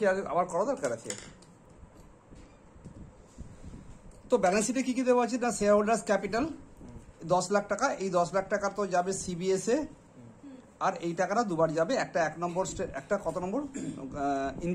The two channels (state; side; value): identical; both; correlation 1.00